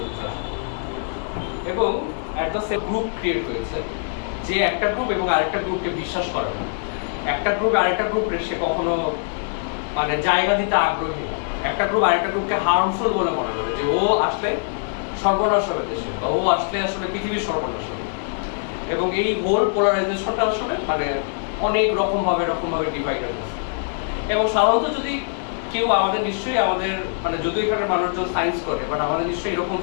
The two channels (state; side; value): silent; right; 61 dB below the other